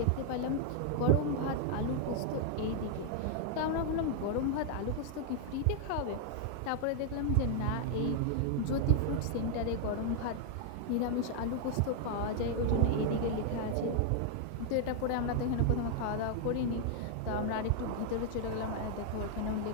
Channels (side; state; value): both; different; correlation 0.00